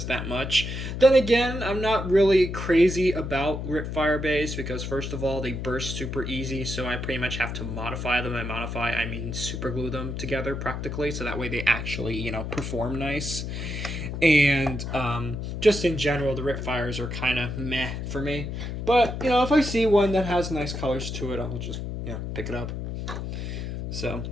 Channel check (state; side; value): noise; left; hum, 5 dB below the sound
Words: that much. Then again, I'm not really crazy about Ripfire bays, because first of all, they burst super easy, so I pretty much have to modify them. And modify, I mean super glue them together practically, so that way they actually, you know, perform nice. And just in general, the Ripfires are kind of meh for me. But, you know, if I see one that has nice colors to it, I'll just, you know, pick it up. So,